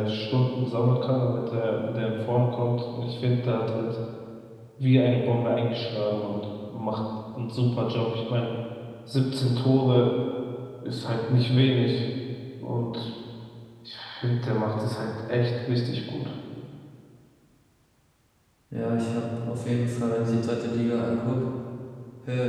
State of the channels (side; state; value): both; identical; correlation 1.00